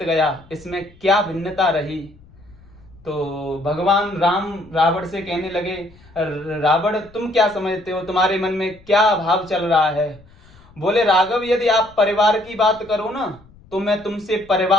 गया, इसमें क्या भिन्नता रही। तो भगवान राम रावण से कहने लगे, रावण, तुम क्या समझते हो, तुम्हारे मन में क्या भाव चल रहा है। बोले, राघव, यदि आप परिवार की बात करो ना, तो मैं तुमसे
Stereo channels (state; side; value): noise; left; rumble, 25 dB below the sound